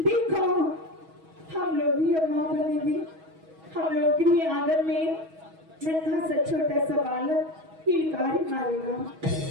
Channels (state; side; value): late; left; 6.2 ms